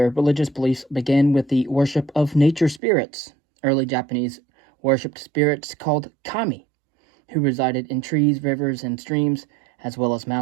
religious beliefs began with the worship of nature spirits. Early Japanese worshipped spirits called kami, who resided in trees, rivers, and streams, as well as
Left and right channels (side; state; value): left; drops out; at 2.8 s